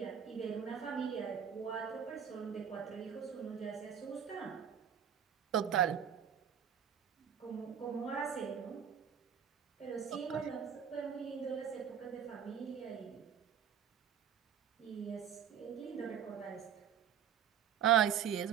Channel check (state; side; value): quieter; left; 8.5 dB